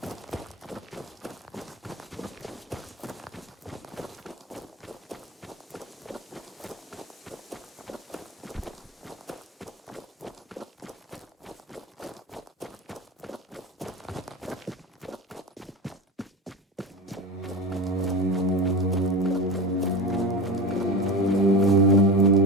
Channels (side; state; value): both; normal; correlation 0.25